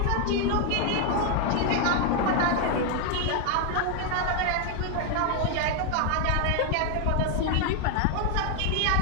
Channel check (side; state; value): both; different; correlation 0.00